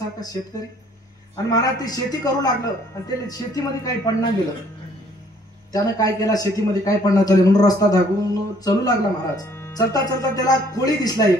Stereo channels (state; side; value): normal; both; correlation 0.61